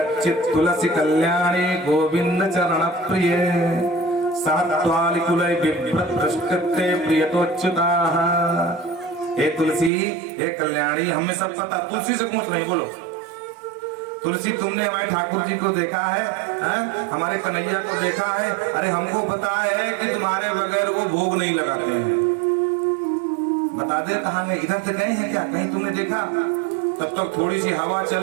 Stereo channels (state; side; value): drops out; left; at 9.9 s